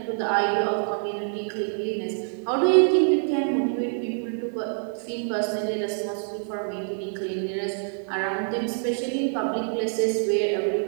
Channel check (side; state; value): left; silent; 61 dB below the other